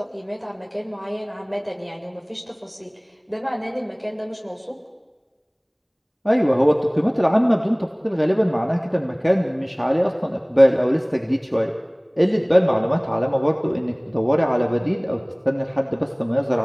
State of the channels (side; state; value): both; identical; correlation 1.00